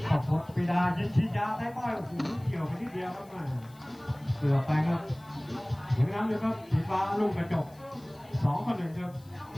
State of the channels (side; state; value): left; noise; hiss, 28 dB below the sound